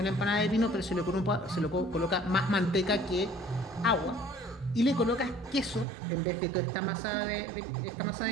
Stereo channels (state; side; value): drops out; left; at 5.9 s